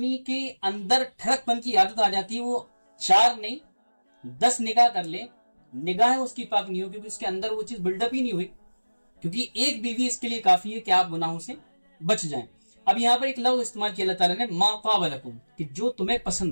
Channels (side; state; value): both; inverted; correlation -1.00